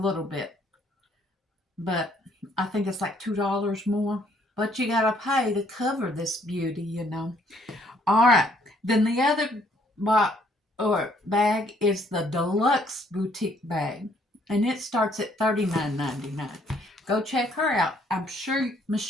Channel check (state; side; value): normal; both; correlation 0.66